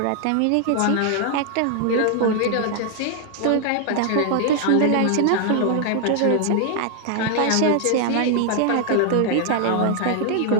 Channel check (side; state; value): both; different; correlation 0.00